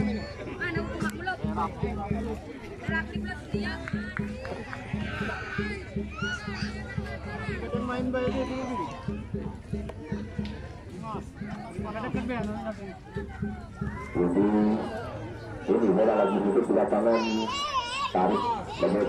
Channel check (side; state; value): both; identical; correlation 1.00